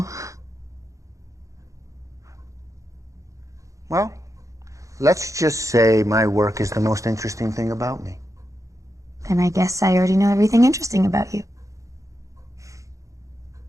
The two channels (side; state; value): left; late; 0.15 ms